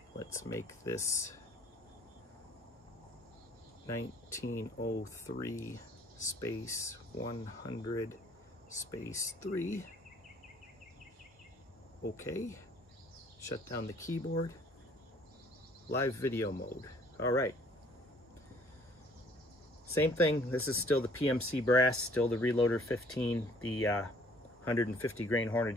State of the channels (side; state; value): both; normal; correlation 0.58